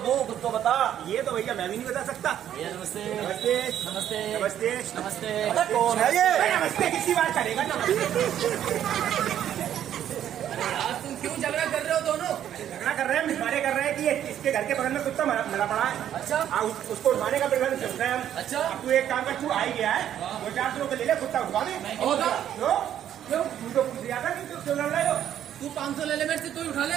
दूं कुछ तो बता। ये तो भैया मैं भी नहीं बता सकता। नमस्ते नमस्ते नमस्ते नमस्ते नमस्ते। अरे कौन है ये? नमस्ते किसी बात करेगा नमस्ते। यार तुम क्यों झगड़ा कर रहे हो दोनों? झगड़ा कर रहे हैं, मिसमारे कर रहे हैं कि इसके घर के बगल में कुत्ता मरा पड़ा है। अच्छा उसको उठवाने का प्रबंध चल रहा है हम। अच्छा। अब तू एक काम कर, तू आ ही गया है, 2-400 रुपए ले ले, कुत्ता उठवा दे। होगा क्यों क्यों तू तो पूछ रहा था कि क्यों लड़ रहे हो? तू 500 ले ले मेरे से, तू ही उठा ले।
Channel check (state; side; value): quieter; left; 10.6 dB